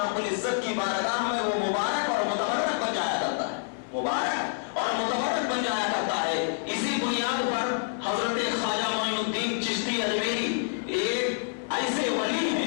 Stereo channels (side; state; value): right; silent; 60 dB below the other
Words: العزت کی بارگاہ میں وہ مبارک اور متبرک بن جایا کرتا ہے، مبارک اور متبرک بن جایا کرتا ہے۔ اسی بنیاد پر حضرت خواجہ معین الدین چشتی اجمیری ایک ایسے ولی